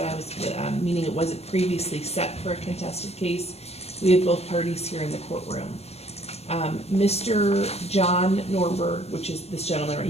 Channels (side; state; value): right; late; 0.30 ms